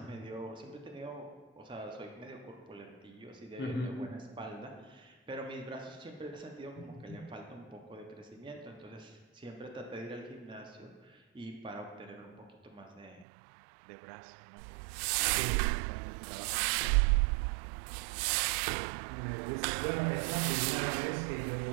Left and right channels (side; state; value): left; drops out; at 13.2 s